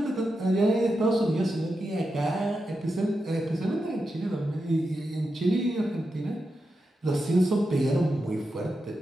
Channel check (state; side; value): normal; both; correlation 0.88